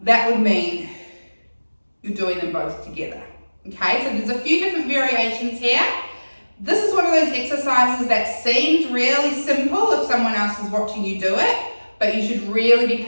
That would mean you're doing them both together. Okay, so there's a few different variations here. This is one of those exercises that seems really simple if someone else is watching you do it, but you should really be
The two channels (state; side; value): inverted; both; correlation -1.00